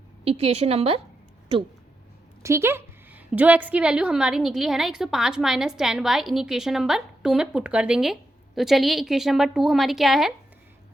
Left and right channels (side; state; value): both; normal; correlation 0.85